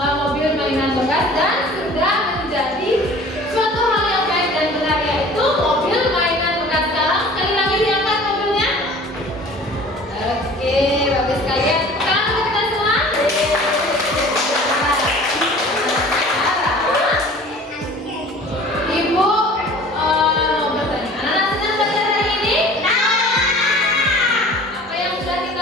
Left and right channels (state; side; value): normal; both; correlation 0.45